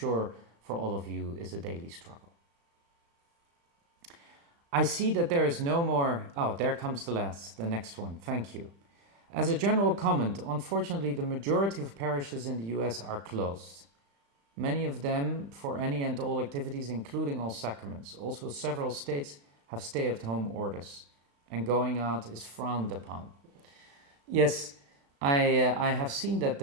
for all of you is a daily struggle. I see that there is no more... Oh, there comes the next one. Thank you. As a general comment, unfortunately, the majority of parishes in the US are closed. Many of them for any and all activities, including all sacraments. Also, several states have stay-at-home orders, and going out is frowned upon. Yes, I have seen that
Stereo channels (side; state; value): left; late; 35 ms